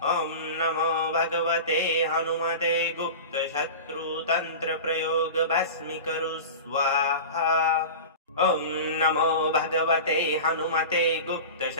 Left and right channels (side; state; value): both; inverted; correlation -0.31